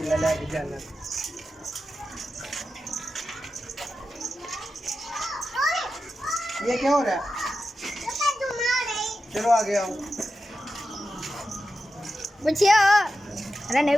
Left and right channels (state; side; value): normal; both; correlation 0.91